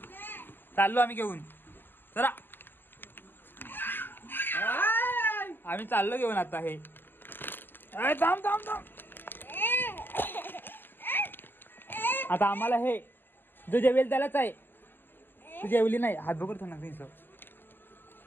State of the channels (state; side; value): late; right; 0.099 ms